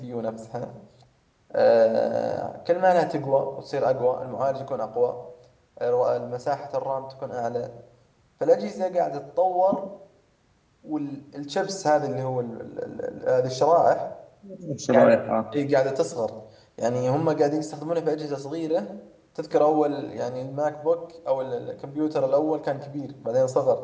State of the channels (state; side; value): identical; both; correlation 1.00